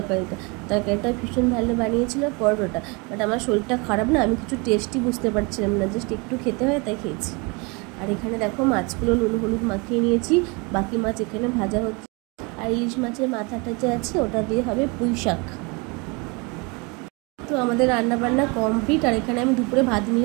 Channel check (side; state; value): left; quieter; 29.4 dB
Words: তরকারিটা ভীষণ ভালো বানিয়েছিল পরোটাটা। বাট আমার শরীরটা খারাপ না, আমি কিছু টেস্টই বুঝতে পারছিলাম না, জাস্ট একটু খেতে হয় তাই খেয়েছি। আর এখানে দেখো মাছগুলো নুন হলুদ মাখিয়ে নিয়েছি, বাকি মাছ এখানে ভাজা হচ্ছে। আর ইলিশ মাছের মাথাটা যে আছে ওটা দিয়ে হবে পুঁইশাক। তো আমাদের রান্নাবান্না কমপ্লিট, আর এখানে আমি দুপুরে ভাত